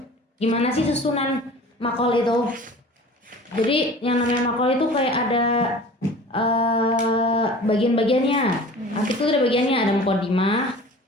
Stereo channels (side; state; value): both; normal; correlation 0.42